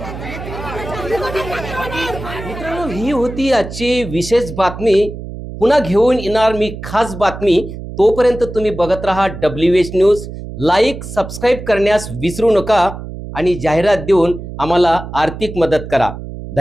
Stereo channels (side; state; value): right; noise; hum, 10 dB below the sound